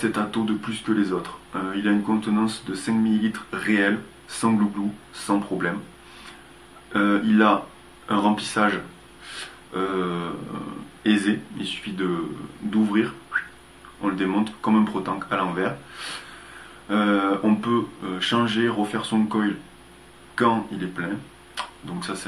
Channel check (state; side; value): identical; both; correlation 1.00